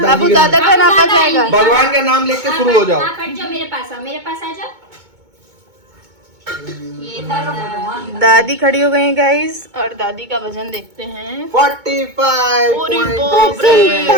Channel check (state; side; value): late; left; 2.2 ms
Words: दादा का नापा जाएगा। भगवान का नाम लेके शुरू हो जाओ। आप हट जाओ, मेरे पास आओ, मेरे पास आ जाओ। ये था दादी खड़ी हो गई गाइस और दादी का वजन देखते हैं।